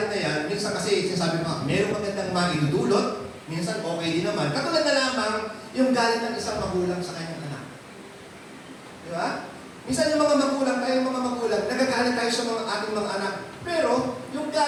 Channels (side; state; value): both; identical; correlation 1.00